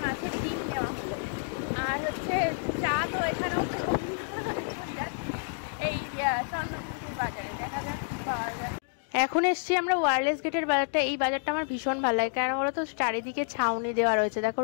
মাছের ডিম নেওয়া হলো। আর হচ্ছে চা তো এখানেও এই চন্দ্রপুর বাজারে দেখা যাক পাওয়া যায়। এখন এসছি আমরা ওয়্যারলেস গেটের বাজারটা। এই বাজারটা আমার ভীষণ ভালো লাগে, কেন বলো তো, চারিদিকে ছাউনি দেওয়া রয়েছে, দেখো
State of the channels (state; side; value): silent; right; digital silence